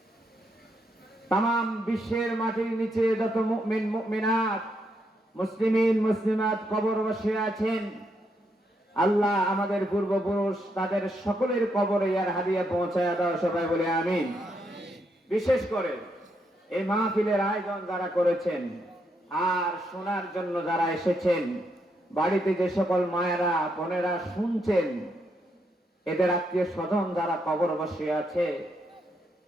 তাম বিশ্বের মাটির নিচে যত মুমিন মুমিনাত, মুসলিমিন মুসলিমাত কবর বসে আছেন, আল্লাহ আমাদের পূর্বপুরুষ তাদের সকলের কবরে ইয়ার হাদিয়া পৌঁছায় দাও। সবাই বলে আমিন। বিশেষ করে এই মাহফিলের আয়োজন যারা করেছেন আর শোনার জন্য যারা এসেছেন, বাড়িতে যে সকল মায়েরা বোনেরা শুনছেন, এদের আত্মীয় স্বজন যারা কবর বসে আছে,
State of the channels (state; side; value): normal; both; correlation 0.78